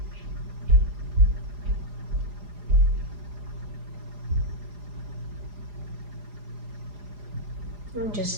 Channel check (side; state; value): left; late; 4.9 ms